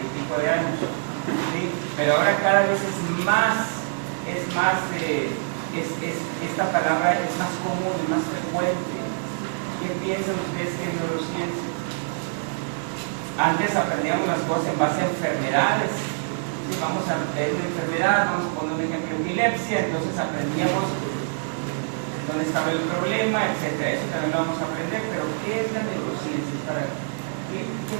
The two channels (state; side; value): silent; left; digital silence